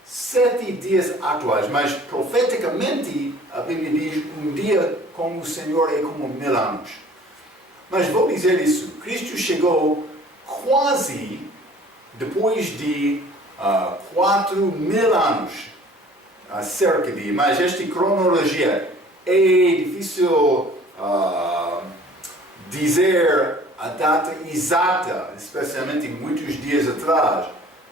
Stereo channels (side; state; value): both; normal; correlation 0.51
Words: 7 dias atuais, mas profeticamente a Bíblia diz um dia com o Senhor é como 1000 anos. Mas vou dizer isso, Cristo chegou quase depois de 4000 anos, cerca de, mas esta cronologia é difícil dizer a data exata, especialmente muitos dias atrás,